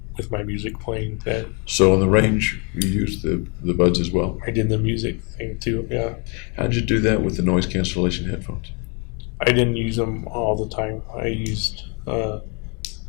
with my music playing. That So on the range, you used the buds as well. I did the music thing too. Yeah. How'd you do that with the noise cancellation headphones? I didn't use them all the time. I used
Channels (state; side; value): quieter; right; 34.1 dB